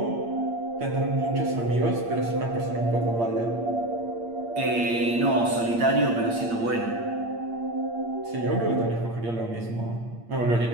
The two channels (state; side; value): late; left; 8.6 ms